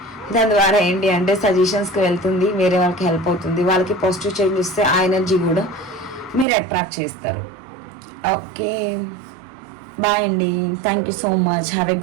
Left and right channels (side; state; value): left; drops out; at 6.5 s